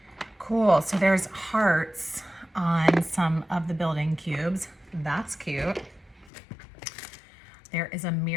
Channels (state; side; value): drops out; right; at 6.3 s